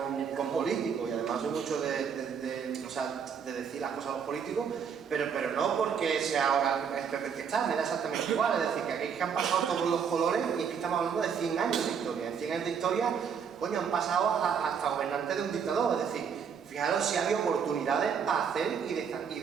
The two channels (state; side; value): quieter; left; 7.0 dB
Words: con políticos y además soy mucho de decir las cosas a los políticos, pero no porque sea ahora el PP que está, me da exactamente igual. Es decir, que aquí han pasado todos los colores y es que estamos hablando de 100 años de historia. En 100 años de historia, coño, han pasado hasta gobernantes de un dictador. Es decir, fijaros si había oportunidades para hacer y